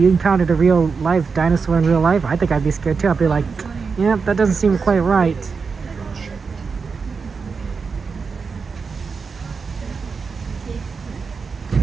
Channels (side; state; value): left; quieter; 5.2 dB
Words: encountered a real life dinosaur in real life, I think I'd be scared too. I'd be like, yeah, that doesn't seem quite right.